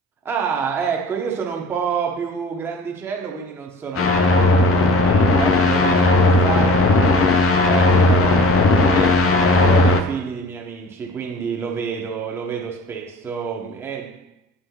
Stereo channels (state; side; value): normal; both; correlation 0.43